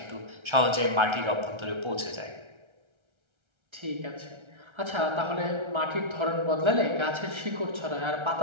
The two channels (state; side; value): late; left; 1.3 ms